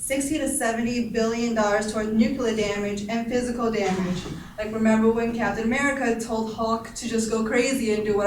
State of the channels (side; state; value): both; identical; correlation 1.00